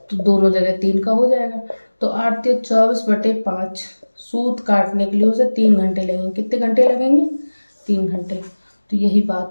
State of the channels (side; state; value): both; inverted; correlation -1.00